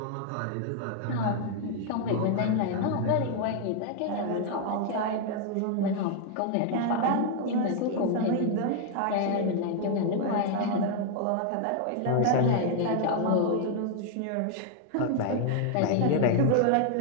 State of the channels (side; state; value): both; different; correlation 0.00